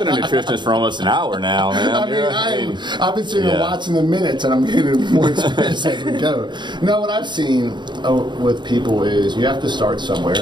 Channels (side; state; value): left; late; 0.22 ms